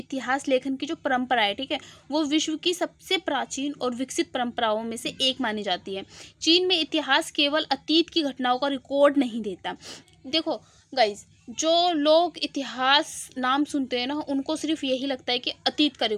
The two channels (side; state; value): both; identical; correlation 1.00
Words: लेखन की जो परंपरा है, ठीक है, वो विश्व की सबसे प्राचीन और विकसित परंपराओं में से एक मानी जाती है। चीन में इतिहास केवल अतीत की घटनाओं का रिकॉर्ड नहीं देता। देखो गाइज, जो लोग इतिहास नाम सुनते हैं ना, उनको सिर्फ यही लगता है कि अतीत का